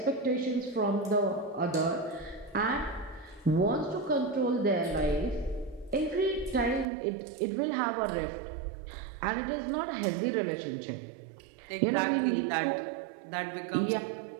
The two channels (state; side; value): drops out; left; at 6.9 s